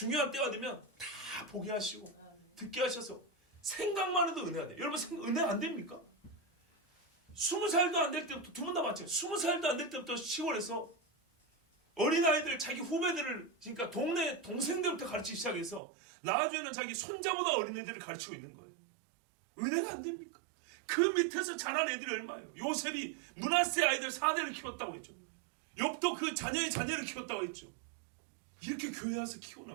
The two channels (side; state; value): left; drops out; at 15.8 s